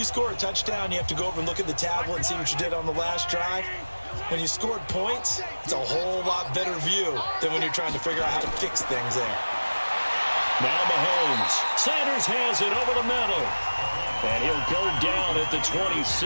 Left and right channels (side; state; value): both; inverted; correlation -1.00